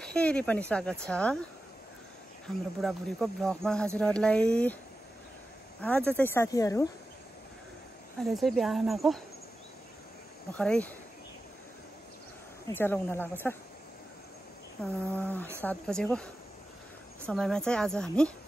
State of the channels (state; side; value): normal; both; correlation 0.93